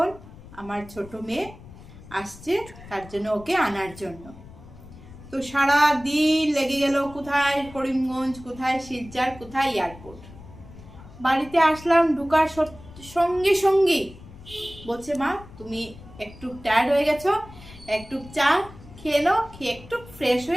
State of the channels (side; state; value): left; noise; rumble, 18 dB below the sound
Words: আমার ছোট মেয়ে আসছে, তার জন্য ওকে আনার জন্য। তো সারা দিন লেগে গেল, কোথায় করিমগঞ্জ, কোথায় শিলচর, কোথায় এয়ারপোর্ট। বাড়িতে আসলাম, ঢুকার সঙ্গে সঙ্গে বলছে মা তুমি একটু টায়ার্ড হয়ে গেছো, একটু চা খেয়ে নাও, খেয়ে একটু ফ্রেশ